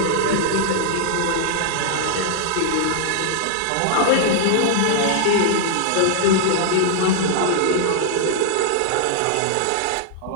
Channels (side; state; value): both; different; correlation -0.01